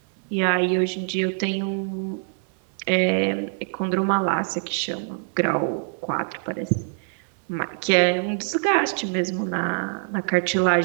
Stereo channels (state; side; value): silent; left; 62 dB below the other